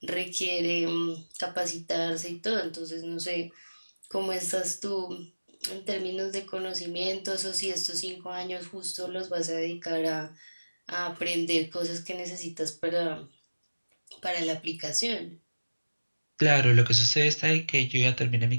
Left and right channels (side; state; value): both; inverted; correlation -1.00